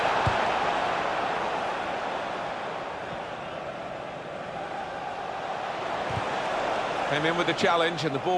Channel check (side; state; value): both; identical; correlation 1.00